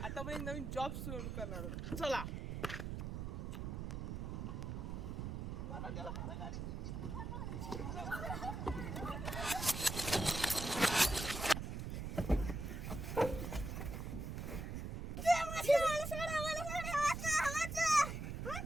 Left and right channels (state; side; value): noise; right; rumble, 4 dB below the sound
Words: आता आपण एक नवीन जॉब सुरू करणार आहोत. चला.